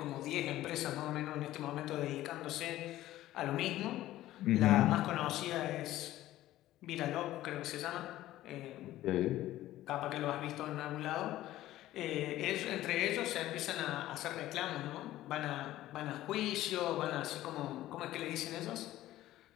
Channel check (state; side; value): quieter; right; 14.8 dB